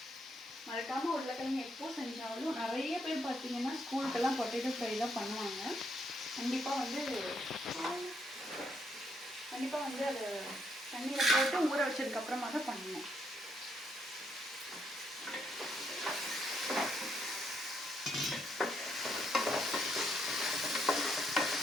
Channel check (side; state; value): both; normal; correlation 0.74